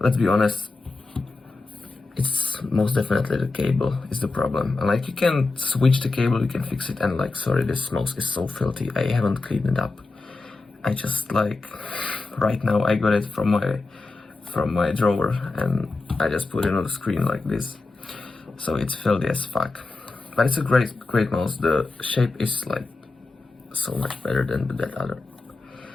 be honest, it's most definitely the cable is the problem. And you can switch the cable, you can fix it. And sorry, this mouse is so filthy. I haven't cleaned it up. I just right now I got it from my drawer, and I just put it on the screen like this. So it's filthy as fuck. But it's a great mouse. The shape is so much better than that other.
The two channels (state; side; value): quieter; right; 3.5 dB